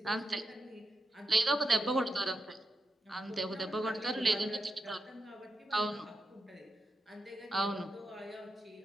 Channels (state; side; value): normal; both; correlation 0.87